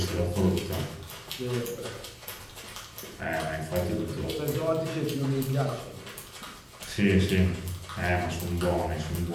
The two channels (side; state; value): both; identical; correlation 1.00